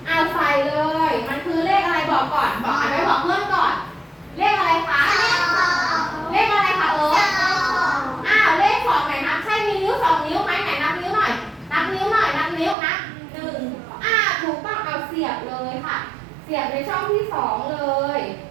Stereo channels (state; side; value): drops out; left; at 12.8 s